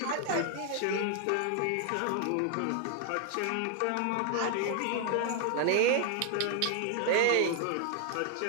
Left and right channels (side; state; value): both; different; correlation 0.00